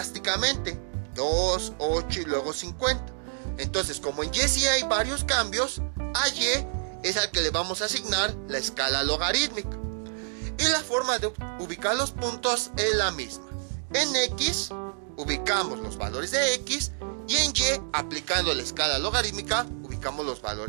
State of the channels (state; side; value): silent; left; 59 dB below the other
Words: 2, 8 y luego 50. Entonces, como en Y sí hay varios cambios, a Y es al que le vamos a asignar la escala logarítmica. Y la forma de ubicar los puntos es la misma. En X ubicamos los valores de X y en Y, aplicando la escala logarítmica, ubicamos los